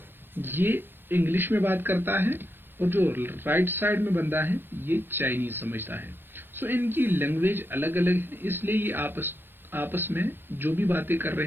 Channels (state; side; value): late; left; 0.10 ms